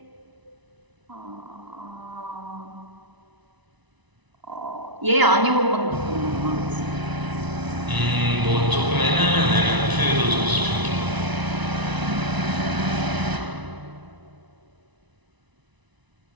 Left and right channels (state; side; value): late; left; 1.0 ms